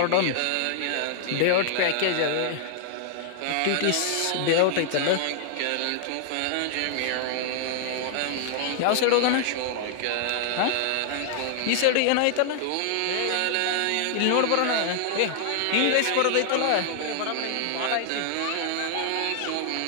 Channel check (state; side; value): different; both; correlation 0.00